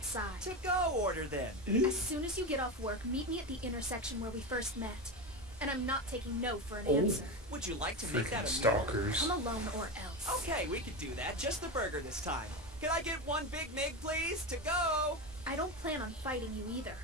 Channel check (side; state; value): both; normal; correlation 0.18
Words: To go order then. As soon as you get off work, meet me at the intersection where we first met. And I'm not taking no for an Oh. answer. Would you like to make Freaking that a meal? stalkers. Come alone or else. Okay, we could do that. Just the burger this time. Can I get one Big Mig, please? To go. I don't plan on fighting you either.